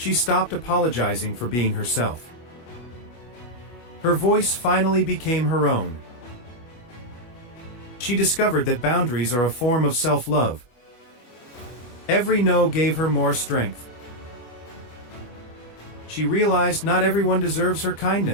stopped apologizing for being herself. Her voice finally became her own. She discovered that boundaries are a form of self-love. Every no gave her more strength. She realized not everyone deserves her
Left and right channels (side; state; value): right; late; 25 ms